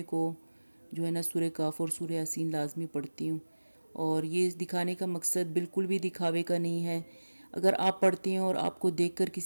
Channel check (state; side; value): inverted; both; correlation -1.00